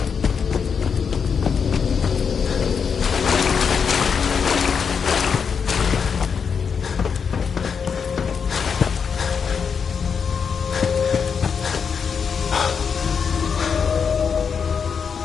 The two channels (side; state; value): right; quieter; 6.4 dB